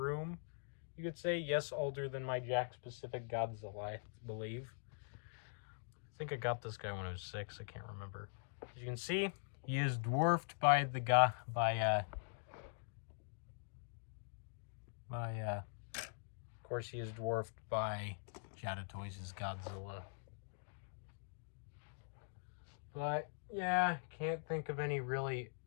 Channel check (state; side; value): silent; right; digital silence